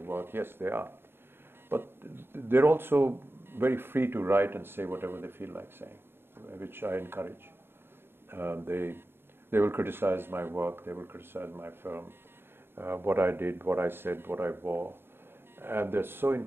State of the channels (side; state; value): left; late; 0.11 ms